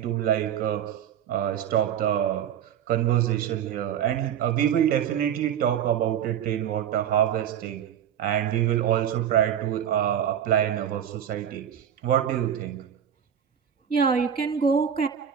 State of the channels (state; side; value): quieter; left; 9.2 dB